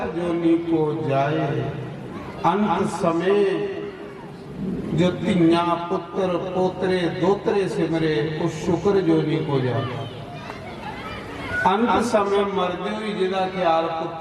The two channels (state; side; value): identical; both; correlation 1.00